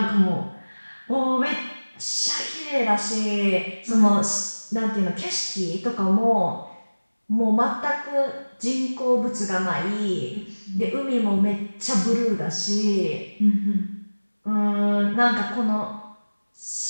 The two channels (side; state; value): both; inverted; correlation -1.00